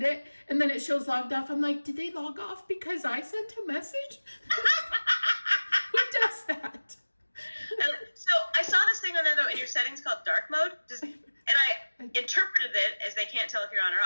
it, and then it shows logged off. I'm like, did they log off because I sent a message? Who does that? So I saw this thing on there though in your settings called dark mode. And I interpreted it as they can't tell if you're on or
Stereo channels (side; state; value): both; inverted; correlation -1.00